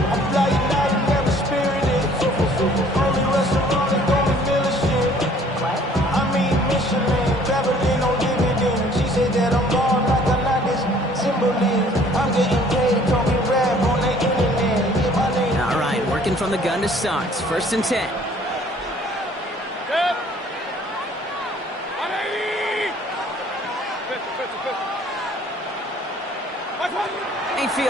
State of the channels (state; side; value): normal; both; correlation 0.56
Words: All right, working from the gun to start. 1st and 10.